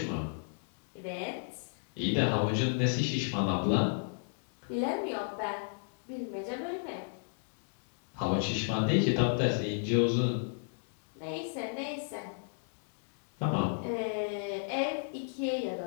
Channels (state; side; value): silent; right; digital silence